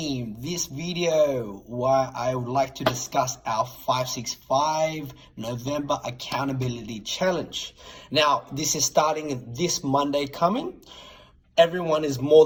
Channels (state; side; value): identical; both; correlation 1.00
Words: This video where I would like to discuss our 565 November accountability challenge. Now, this is starting this Monday coming. Everyone is more